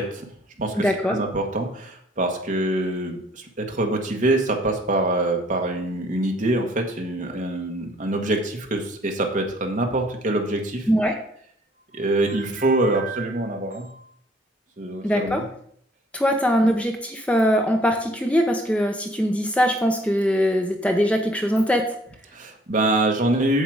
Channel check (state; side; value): normal; both; correlation 0.60